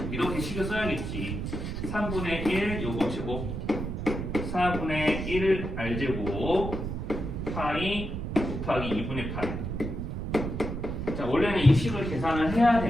이렇게 식을 써야겠지. 3분의 1 요거 제곱 4분의 1 R제곱 파이 곱하기 2분의 파이. 자, 원래는 이 식을 계산을 해야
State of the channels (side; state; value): right; noise; rumble, 4 dB below the sound